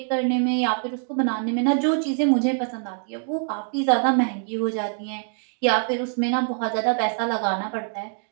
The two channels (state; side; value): silent; left; 62 dB below the other